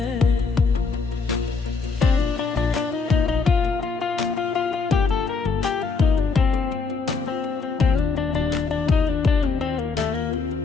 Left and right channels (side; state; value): right; quieter; 4.6 dB